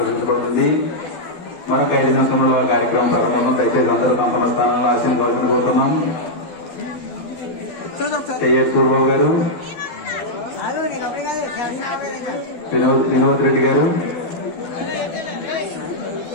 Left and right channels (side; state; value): right; late; 12 ms